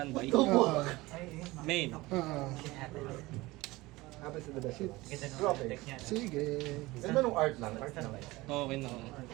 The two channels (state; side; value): quieter; left; 20.4 dB